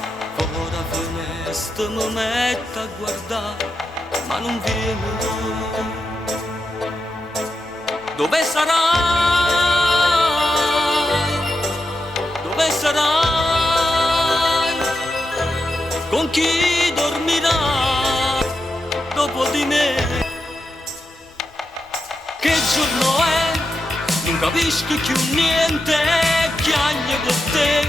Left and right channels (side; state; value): both; normal; correlation 0.87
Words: Ora finestra mi metto a guardare, ma non viene. Dove sarai? Dove sarai? Con chi dormirai dopo di me? Che giorno è? Non capisco più niente, piango per